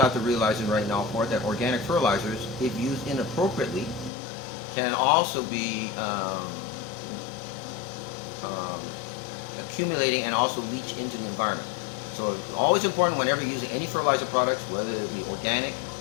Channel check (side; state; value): right; drops out; at 4.1 s